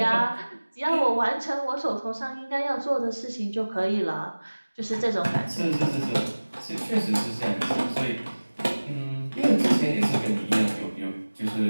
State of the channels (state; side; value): inverted; both; correlation -1.00